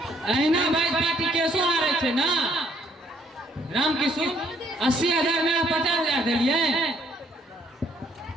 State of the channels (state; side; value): normal; both; correlation 0.65